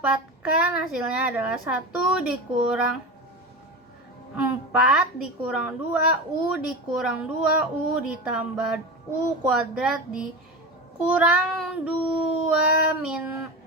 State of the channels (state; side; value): normal; both; correlation 0.25